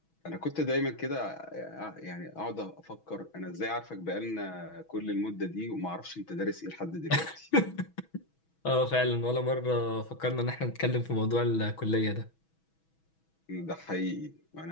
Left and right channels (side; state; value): right; late; 6.2 ms